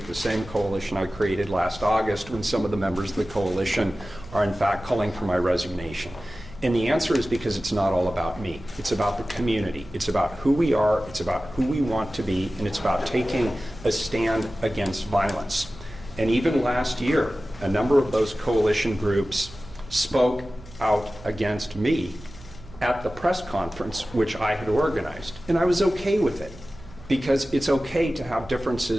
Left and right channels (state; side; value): noise; right; hum, 19 dB below the sound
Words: the same coalition I created last August when some of the members of the coalition are in fact calling for my resignation? And the answer is because it's not all about me. It's about the community. It's about who we are. It's about who we want to be. And it's about taking a stand against violence. And even last year, a number of those coalition groups spoke out against me at the press conference, which I had organized. And I was okay with it, because it's okay to have